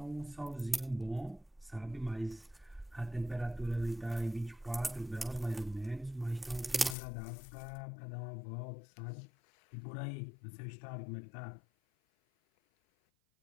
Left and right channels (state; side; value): drops out; right; at 7.0 s